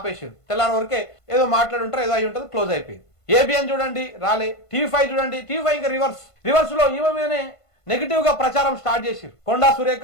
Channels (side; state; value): right; late; 1.5 ms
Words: తెల్లారి వరకే ఏదో మాట్లాడుంటారు, ఏదో అయి ఉంటుంది, క్లోజ్ అయిపోయింది. ఏబిఎన్ చూడండి రాలే. టీవీ5 చూడండి, టీవీ5 ఇంకా రివర్స్ లో ఈమె మీదనే నెగిటివ్ గా ప్రచారం స్టార్ట్ చేసిరు. కొండా